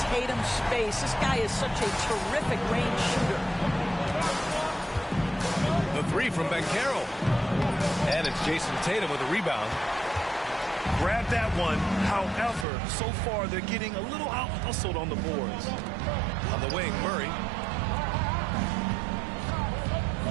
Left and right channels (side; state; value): left; drops out; at 12.7 s